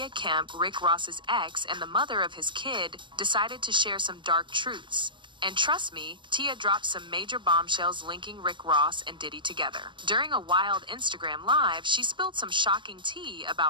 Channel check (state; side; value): late; left; 0.23 ms